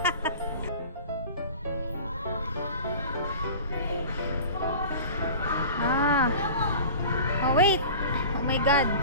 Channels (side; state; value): both; inverted; correlation -0.39